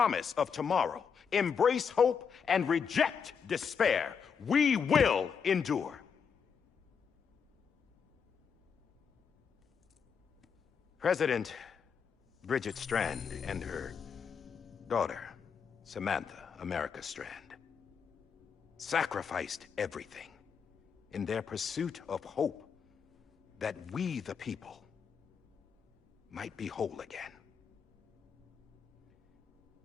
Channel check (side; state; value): right; quieter; 6.6 dB